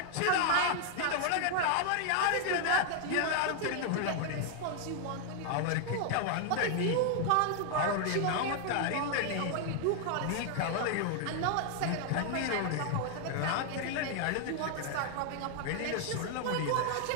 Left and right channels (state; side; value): different; both; correlation 0.00